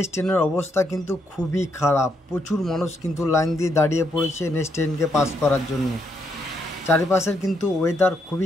অবস্থা কিন্তু খুবই খারাপ। প্রচুর মানুষ কিন্তু লাইন দিয়ে দাঁড়িয়ে পড়েছে NH10কে পাস করার জন্য। চারিপাশের কিন্তু ওয়েদার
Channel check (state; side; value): normal; both; correlation 0.77